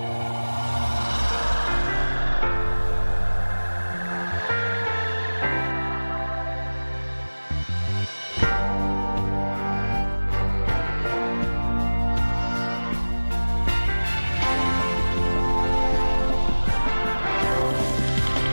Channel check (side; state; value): both; inverted; correlation -1.00